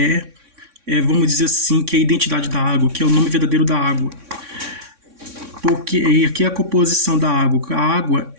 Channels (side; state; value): left; late; 3.6 ms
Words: vamos dizer assim, que é a identidade da água, que é o nome verdadeiro da água. Porque aqui é a composição da água. A água,